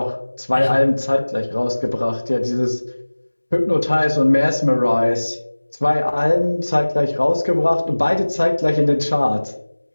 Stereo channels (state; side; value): inverted; both; correlation -1.00